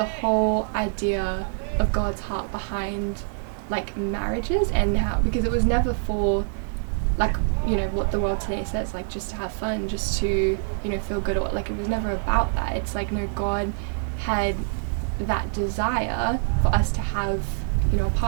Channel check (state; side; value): silent; left; digital silence